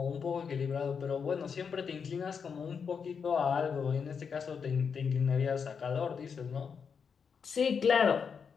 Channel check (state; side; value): quieter; right; 6.3 dB